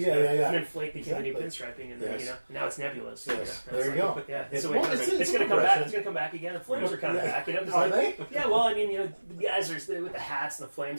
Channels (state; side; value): inverted; both; correlation -1.00